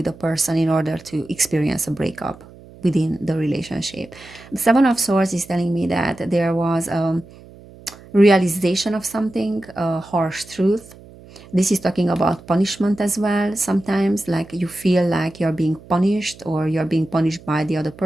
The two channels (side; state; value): right; noise; hum, 21 dB below the sound